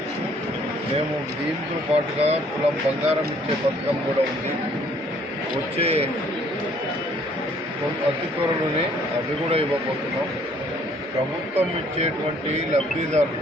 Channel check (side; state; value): both; normal; correlation 0.61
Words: మేము దీంతో పాటుగా తులం బంగారం ఇచ్చే పథకం కూడా ఉంది. వచ్చే అతి త్వరలోనే అవి కూడా ఇవ్వబోతున్నాం. ప్రభుత్వం ఇచ్చేటువంటి లబ్ధిదారులు